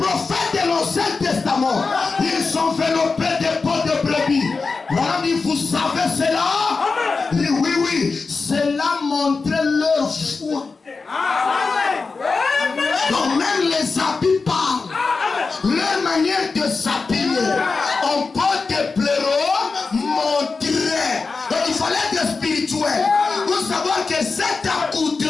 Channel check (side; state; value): right; quieter; 4.3 dB